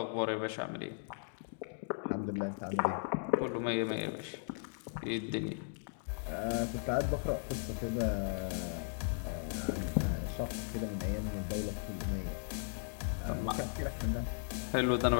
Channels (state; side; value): silent; right; digital silence